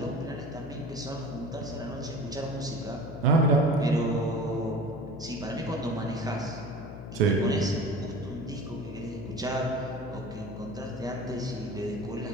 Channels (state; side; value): noise; left; hum, 10 dB below the sound